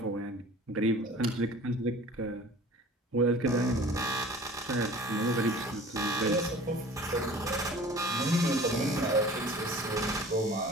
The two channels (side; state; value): both; normal; correlation 0.44